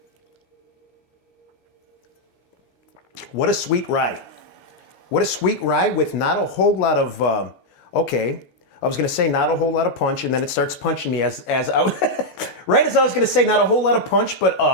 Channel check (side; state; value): right; late; 14 ms